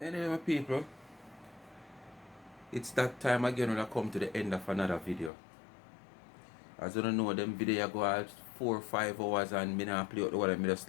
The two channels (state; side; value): drops out; right; at 5.3 s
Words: Anyway, my people, it's that time again when I come to the end of another video. As you don't know, them video go out 4 or 5 hours and me not play out the word. Me just